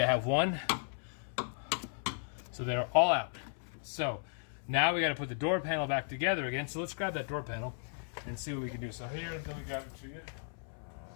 have one. So they're all out. So now we got to put the door panel back together again. So let's grab that door panel and see what we can do. So here, let me grab it for you.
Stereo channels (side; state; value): right; silent; 54 dB below the other